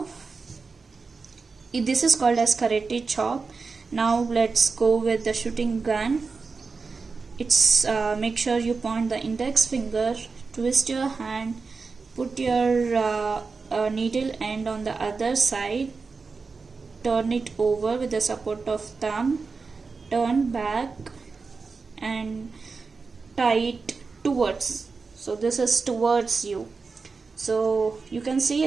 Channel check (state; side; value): quieter; left; 4.5 dB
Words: this is called as karate chop. Now let's go with the shooting gun. It's make sure you point the index finger, twist your hand, put your needle end on the other side, turn it over with the support of thumb, turn back and tie it towards. So this is towards you. So you can see